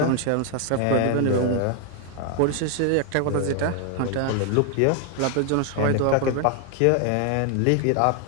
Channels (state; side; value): different; both; correlation 0.01